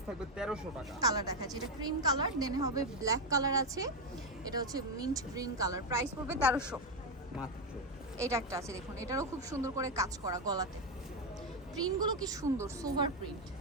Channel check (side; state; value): both; normal; correlation 0.06